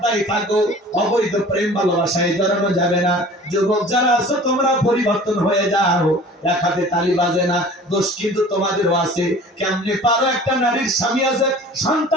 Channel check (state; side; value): normal; both; correlation 0.44